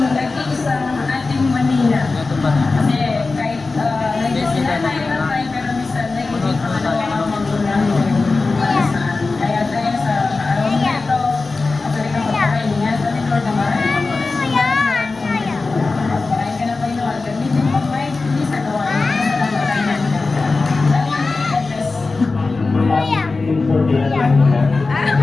sa ating Manila. Kasi kahit nag-sila tayo ng tayo, pero minsan nag-ibig pa na magulang. Kaya tayo sa araw na ito, actually ka magpakain niya. Sa Lord naman, magpakain ka na pa yun. Gamitin mo pa hindi sa gawa.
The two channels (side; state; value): right; quieter; 3.8 dB